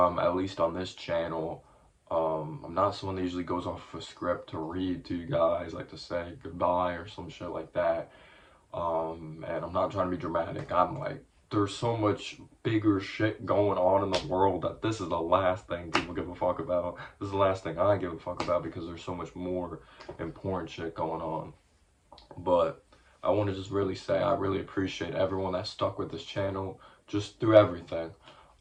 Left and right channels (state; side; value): identical; both; correlation 1.00